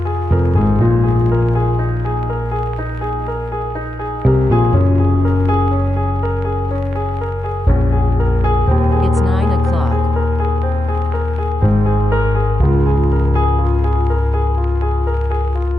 It's 9 o'clock.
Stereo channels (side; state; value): both; normal; correlation 0.89